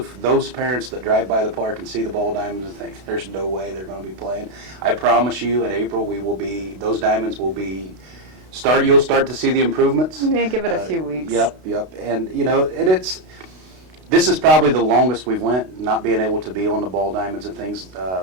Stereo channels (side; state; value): left; late; 32 ms